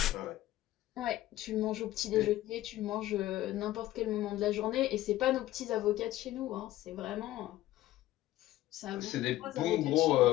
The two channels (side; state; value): right; quieter; 15.2 dB